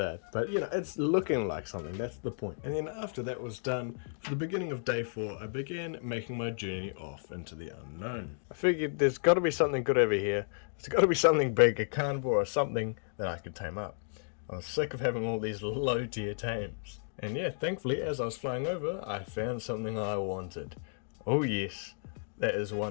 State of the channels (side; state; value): right; silent; digital silence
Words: it. But you know, it's looking like something. That's the point. And then after that was done, for the beginning of day 4, I began making my journey off into the unknown. I figured there's got to be something good over here. There's got to be something big, a carnivore or something that I could tame up. I was sick of having all these low tier tames. And yeah, thankfully, as I was flying over, I found something I wanted. Oh yes, that is